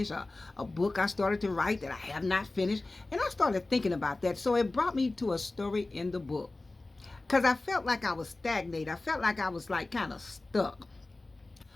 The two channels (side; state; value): right; quieter; 3.1 dB